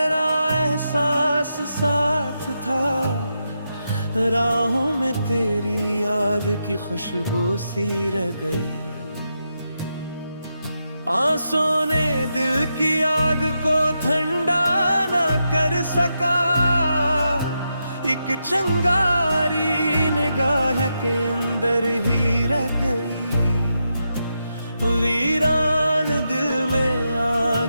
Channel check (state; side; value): inverted; both; correlation -0.85